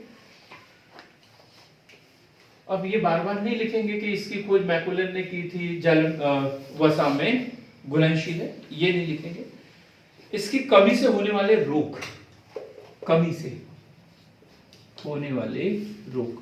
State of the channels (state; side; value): identical; both; correlation 1.00